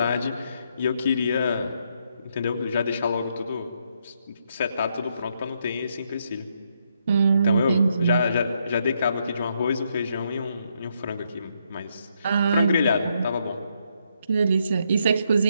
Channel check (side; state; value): both; inverted; correlation -0.76